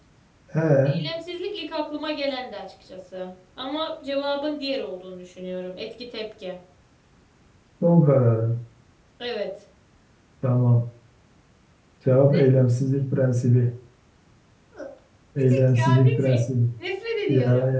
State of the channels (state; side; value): identical; both; correlation 1.00